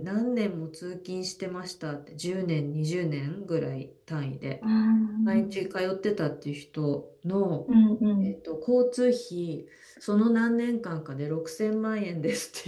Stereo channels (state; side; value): identical; both; correlation 1.00